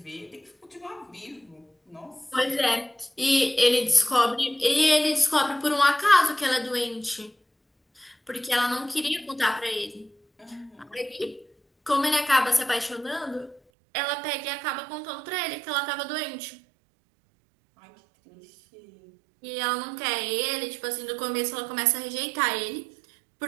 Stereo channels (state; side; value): drops out; left; at 13.6 s